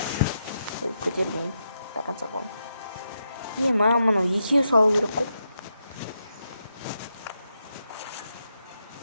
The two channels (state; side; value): inverted; both; correlation -0.83